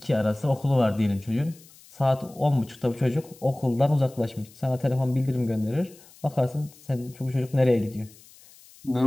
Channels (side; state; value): left; noise; hiss, 24 dB below the sound